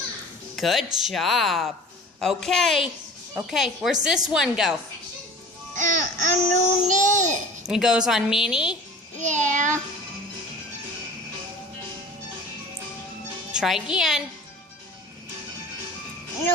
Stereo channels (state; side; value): normal; both; correlation 0.41